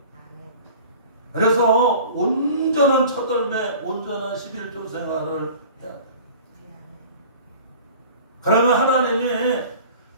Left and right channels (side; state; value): both; inverted; correlation -0.43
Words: 그래서 온전한 첫월매 온전한 11조 생활을 해야 돼요. 그러면 하나님이